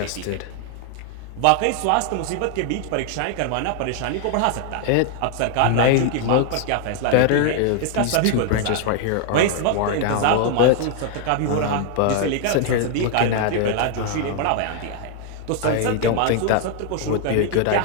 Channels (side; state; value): both; different; correlation 0.00